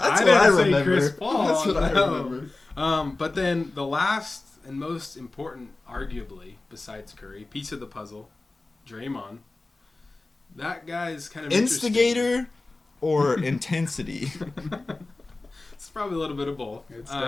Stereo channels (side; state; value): right; quieter; 3.2 dB